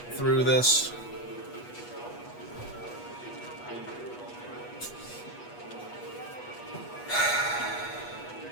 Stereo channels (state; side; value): late; right; 8.3 ms